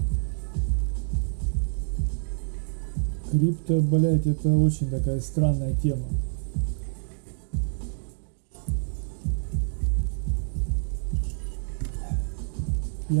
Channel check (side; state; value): left; silent; digital silence